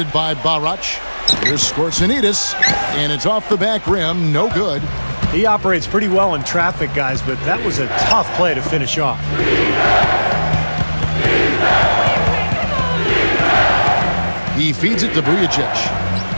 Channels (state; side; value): inverted; both; correlation -1.00